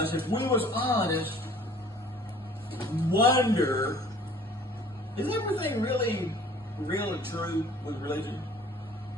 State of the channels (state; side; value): normal; both; correlation 0.51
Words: if we was honest, wonder, is everything really true with religion?